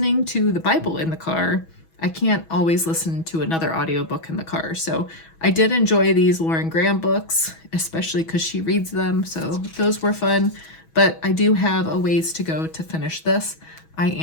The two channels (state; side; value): late; right; 6.2 ms